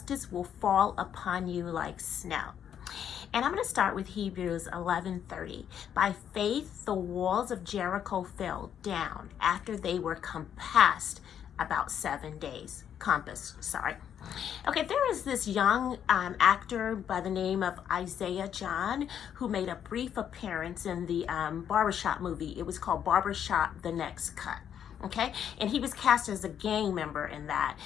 Will Fall Upon You Like Snow. And I'm going to start with Hebrews 11:30. By faith, the walls of Jericho fell down after they were compassed about 7 days. Okay, there is this young actor by the name of Isaiah John who made a brief appearance in the Barbershop movie. It was called Barbershop: The Next Cut. Okay, and he was cast as a gang member in that.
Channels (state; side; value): quieter; right; 9.0 dB